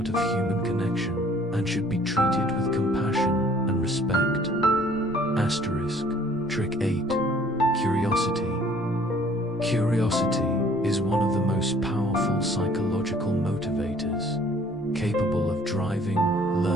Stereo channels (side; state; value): both; normal; correlation 0.56